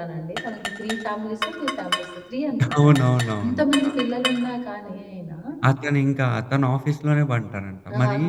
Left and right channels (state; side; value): identical; both; correlation 1.00